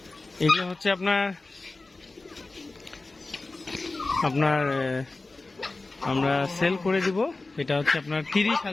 এগুলো হচ্ছে আপনার আমরা সেল করে দিব। এটা হচ্ছে আপনার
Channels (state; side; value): quieter; right; 3.3 dB